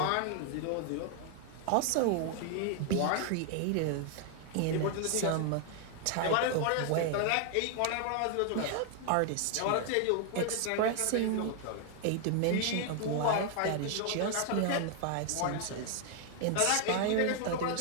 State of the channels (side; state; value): both; different; correlation 0.00